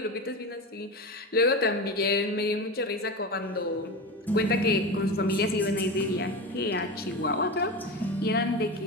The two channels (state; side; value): normal; both; correlation 0.24